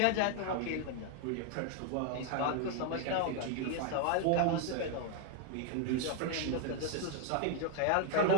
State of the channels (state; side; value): different; both; correlation 0.00